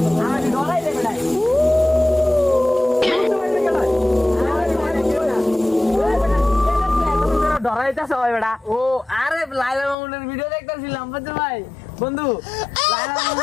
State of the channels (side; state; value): right; drops out; at 10.0 s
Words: আরে ডরাই দে বেড়া ডরাইতেছ ভাই বেড়া। ও আরে লাইলা মামুনের ভিডিও দেখতেছিলাম বুঝছো ভাই বন্ধু।